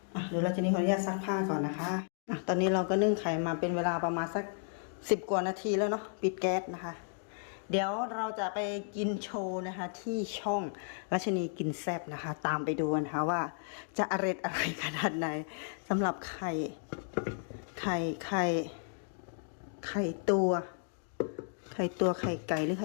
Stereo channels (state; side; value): silent; right; digital silence